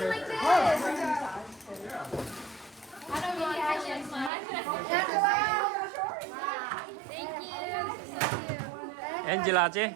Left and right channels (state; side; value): drops out; left; at 4.3 s